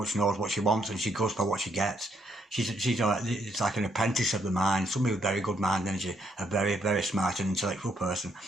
she wants, and she goes for what she gets. She's it's like an apprentice of the mind, somebody with very good mind energy, a very, very smart and intellectual person.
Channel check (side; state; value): both; normal; correlation 0.73